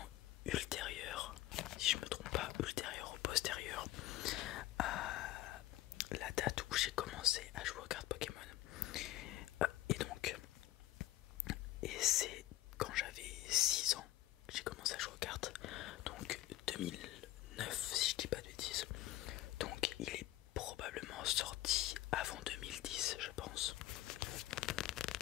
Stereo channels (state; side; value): quieter; right; 15.6 dB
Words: ultérieur, si je me trompe pas, ultérieur ou postérieur à la date où j'ai commencé à jouer aux cartes Pokémon. Et c'est quand j'avais 6 ans que j'ai commencé à jouer aux cartes. Donc 2009 si je dis pas de bêtises. Donc il est probablement sorti avant 2010 je pense.